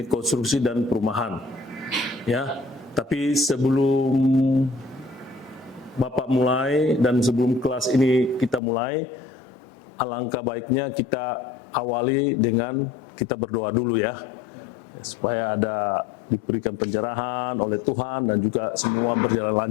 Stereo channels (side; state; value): right; drops out; at 8.6 s